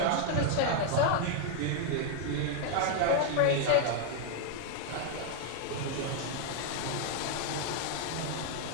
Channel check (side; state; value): both; different; correlation 0.00